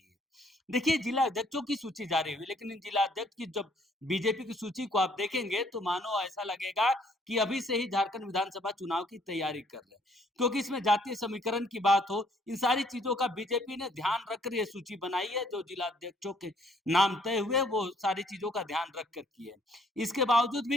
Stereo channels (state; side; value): normal; both; correlation 0.63